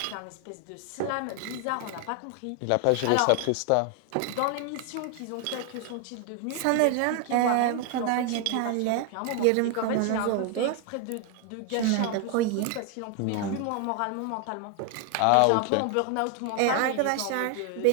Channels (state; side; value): different; both; correlation 0.01